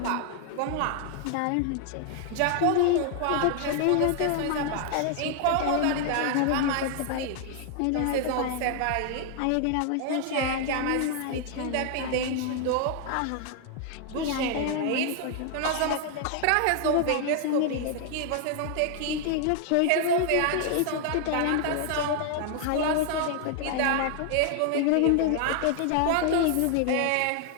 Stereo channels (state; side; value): different; both; correlation 0.00